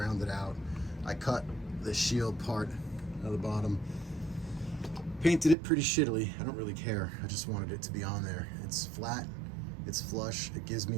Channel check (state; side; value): drops out; left; at 5.6 s